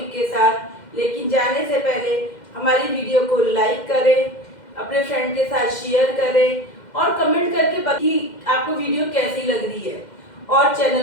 के साथ। लेकिन जाने से पहले हमारी वीडियो को लाइक करें, अपने फ्रेंड के साथ शेयर करें और कमेंट करके बताइए आपको वीडियो कैसी लग रही है, और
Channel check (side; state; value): right; late; 2.1 ms